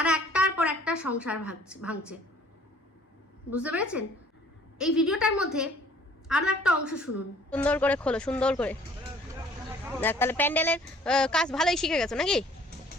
একটার পর একটা সংসার ভাঙছে। বুঝতে পেরেছেন? এই ভিডিওটার মধ্যে আরো একটা অংশ শুনুন। সুন্দর করে খোলো, সুন্দর করে তাহলে প্যান্ডেলের কাজ ভালোই শিখে গেছো নাকি?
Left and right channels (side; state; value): both; normal; correlation 0.56